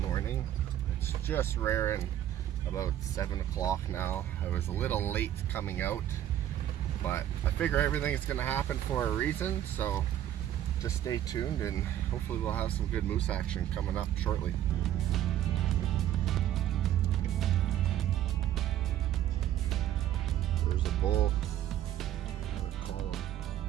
It's just rearing about 7 o'clock now. I was a little late coming out, but I figure everything is going to happen for a reason, so just stay tuned and hopefully we'll have some good moose action coming up shortly. There's a bull and a column.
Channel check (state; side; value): quieter; left; 11.7 dB